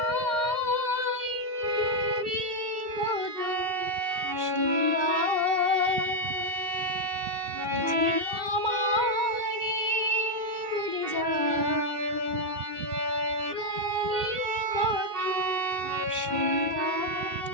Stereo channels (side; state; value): left; late; 2.1 ms